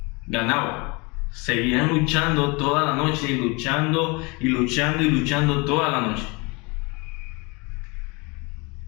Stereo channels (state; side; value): quieter; right; 27.9 dB